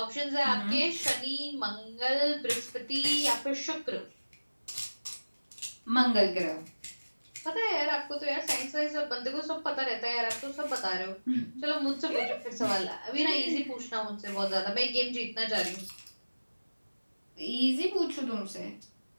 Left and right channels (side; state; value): both; inverted; correlation -1.00